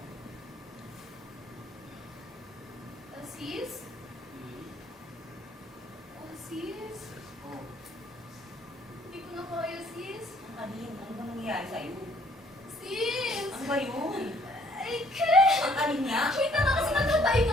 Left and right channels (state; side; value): normal; both; correlation 0.62